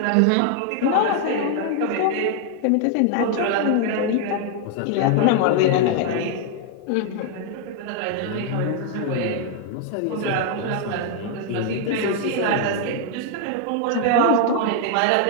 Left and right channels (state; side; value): different; both; correlation 0.00